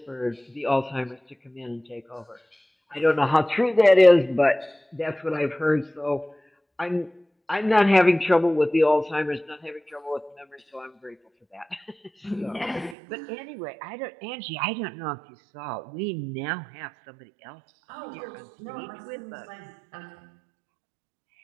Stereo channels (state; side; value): drops out; left; at 13.0 s